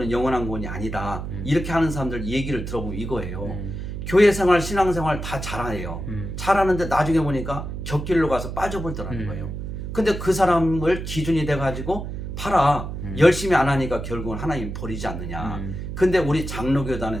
영원한 구원이 아니다. 이렇게 하는 사람들 얘기를 들어보면 이거예요. 교회 생활, 신앙 생활 다 잘해요. 잘하는데 나중에 보니까 격길로 가서 빠져버리더라는 거예요. 근데 그 사람을 기준이 돼가지고 봐라. 열심히 안 하니까 결국은 하나님이 버리지 않느냐. 근데 우리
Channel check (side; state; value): right; noise; hum, 6 dB below the sound